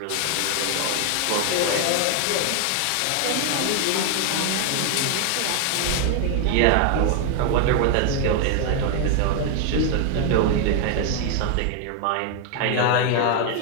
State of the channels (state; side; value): different; both; correlation 0.00